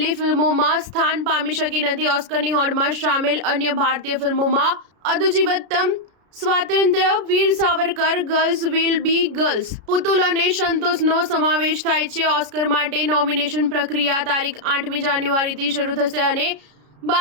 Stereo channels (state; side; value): late; left; 33 ms